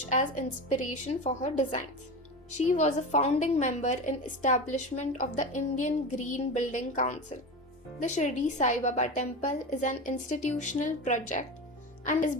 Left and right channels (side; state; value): both; normal; correlation 0.25